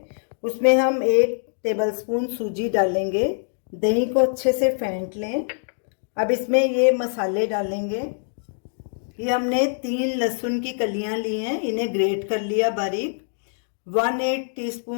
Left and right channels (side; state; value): right; silent; digital silence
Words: उसमें हम 1 टेबलस्पून सूजी डालेंगे। दही को अच्छे से फेंट लें। अब इसमें ये मसाले डालेंगे। ये हमने 3 लहसुन की कलियां ली हैं, इन्हें ग्रेट कर लिया बारीक। 1/8